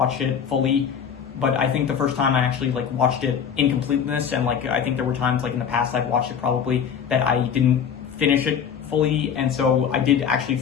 it fully, but I think the first time I actually like watched it in completeness, and like I think there were times like in the past I've watched it probably that I didn't finish it fully, and so I did actually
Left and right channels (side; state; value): right; quieter; 7.6 dB